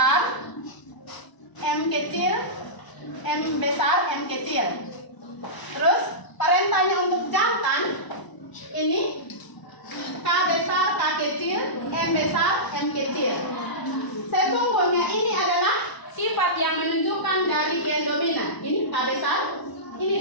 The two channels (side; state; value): right; late; 1.0 ms